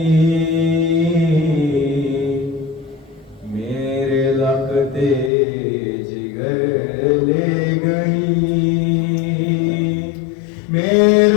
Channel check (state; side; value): drops out; right; at 5.3 s